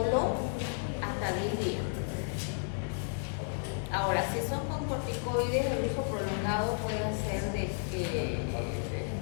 hasta 10 días. Ahora, si son con corticoides, el uso prolongado puede ser de que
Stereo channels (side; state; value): right; silent; digital silence